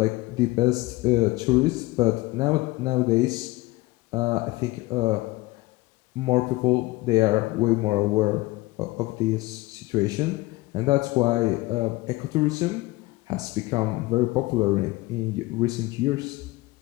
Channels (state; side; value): quieter; right; 20.7 dB